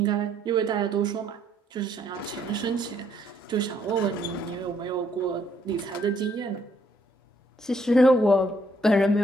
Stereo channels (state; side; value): normal; both; correlation 0.69